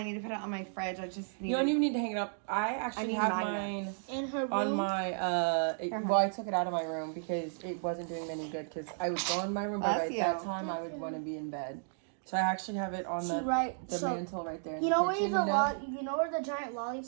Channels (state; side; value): silent; left; digital silence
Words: need to put it on my fridge. I just need. You don't even need to hang it up. I actually have mine In her room. on my. Well, I took it out of my room because it wasn't doing any good. Because I would go in my room, but at that time I would want to be in bed. So I actually have it on the mantle right there. You know where you know where the giant lollipop